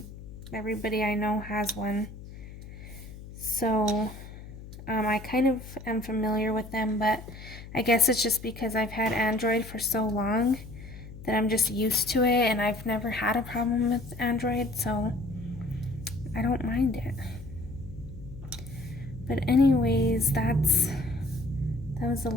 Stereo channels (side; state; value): left; noise; hum, 14 dB below the sound